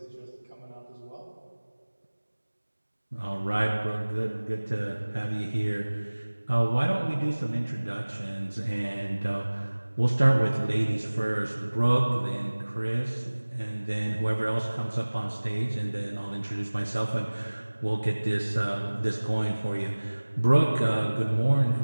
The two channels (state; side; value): inverted; both; correlation -1.00